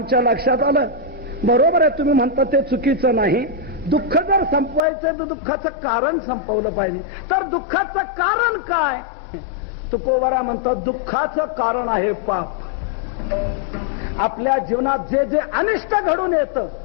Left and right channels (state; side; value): drops out; right; at 4.8 s